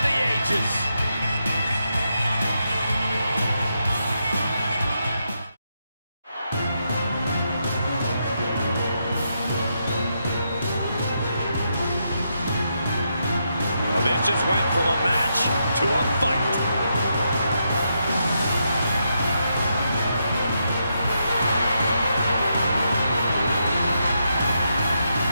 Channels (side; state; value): both; inverted; correlation -0.82